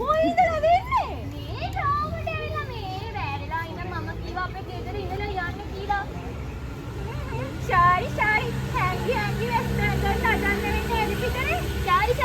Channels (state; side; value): identical; both; correlation 1.00